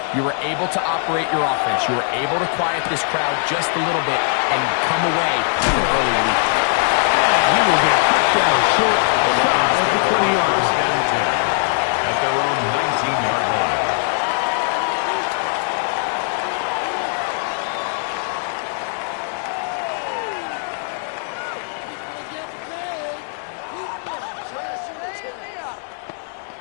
You were able to operate your offense. You were able to quiet this crowd just a little bit and come away with an early lead. And he will get cut down short, shot at the 20-yard line. At their own 19-yard line.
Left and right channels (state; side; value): silent; right; digital silence